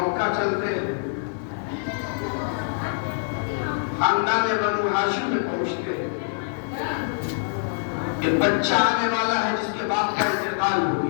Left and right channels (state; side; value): silent; right; digital silence